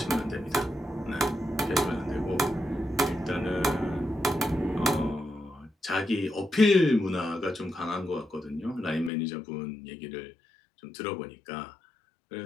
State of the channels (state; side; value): drops out; right; at 9.1 s